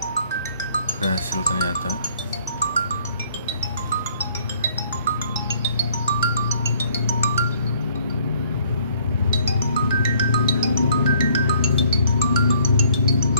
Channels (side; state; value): both; inverted; correlation -0.62